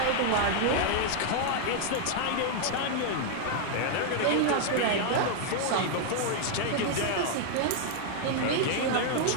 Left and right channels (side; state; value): both; different; correlation 0.00